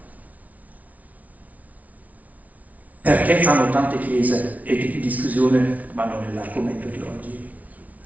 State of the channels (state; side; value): late; left; 0.071 ms